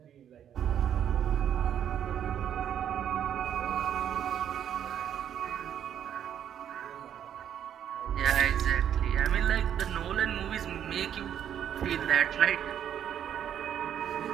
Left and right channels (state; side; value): quieter; left; 9.6 dB